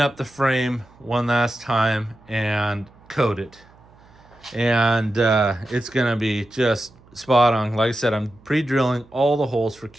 the frame one last time, and coat it. And it's gonna be just spot on. Like I said, I'm pre-drilling all the holes for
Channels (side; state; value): right; noise; hum, 27 dB below the sound